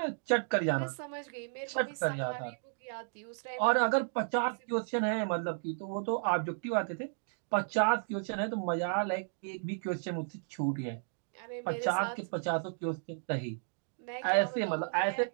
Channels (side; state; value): left; silent; digital silence